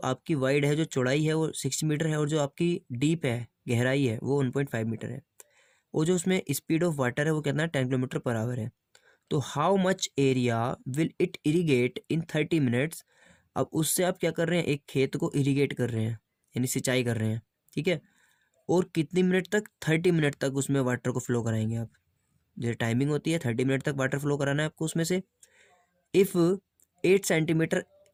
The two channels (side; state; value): both; identical; correlation 1.00